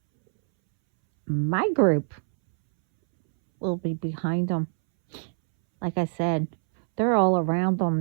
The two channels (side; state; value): left; silent; 62 dB below the other